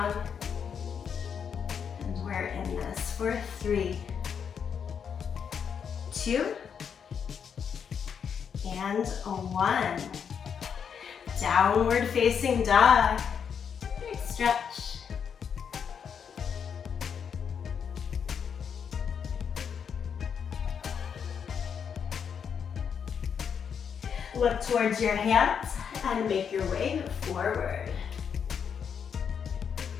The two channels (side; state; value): right; quieter; 7.2 dB